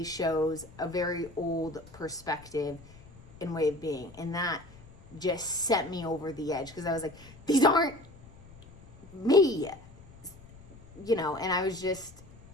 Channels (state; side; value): noise; left; rumble, 21 dB below the sound